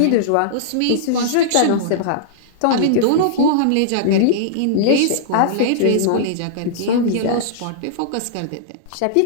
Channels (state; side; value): different; both; correlation -0.02